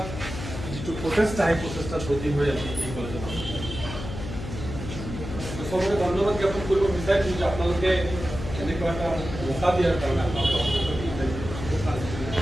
যিটো প্ৰচেষ্টা সেই প্ৰচেষ্টাত ব্ৰতী হৈ আছে এই কলেজত সবকে ধন্যবাদ জ্ঞাপন কৰিব বিচাৰিছোঁ যে আপোনালোকে এনেকুৱা এটা মৌকা দিয়াৰ কাৰণে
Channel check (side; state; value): left; noise; hum, 8 dB below the sound